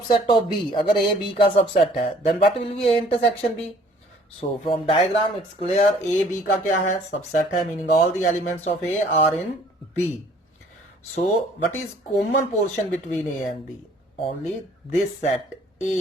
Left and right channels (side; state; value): both; normal; correlation 0.57